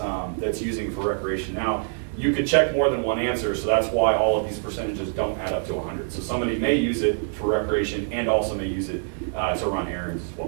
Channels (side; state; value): left; silent; digital silence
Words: that's using it for recreation. Now, you could check more than one answer, so that's why all of these percentages don't add up to 100. So somebody may use it for recreation and also may use it to run errands as